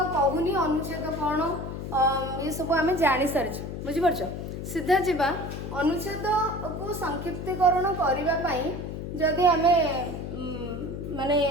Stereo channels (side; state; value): left; noise; hum, 7 dB below the sound